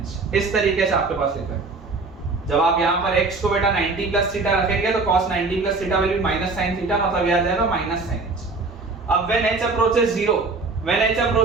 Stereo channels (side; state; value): left; quieter; 3.8 dB